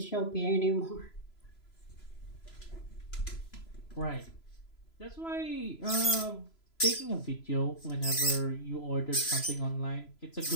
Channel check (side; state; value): right; late; 3.0 ms